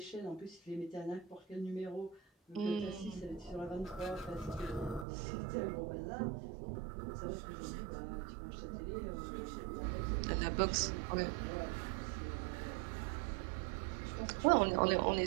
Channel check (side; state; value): left; drops out; at 5.1 s